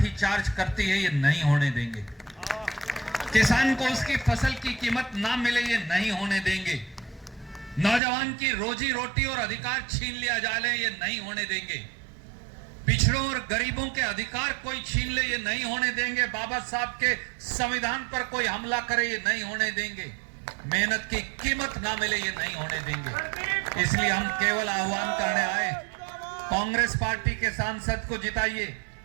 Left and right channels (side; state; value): left; drops out; at 8.0 s